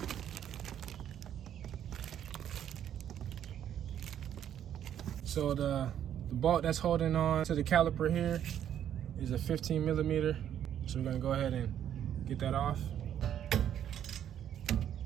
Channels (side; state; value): left; quieter; 10.1 dB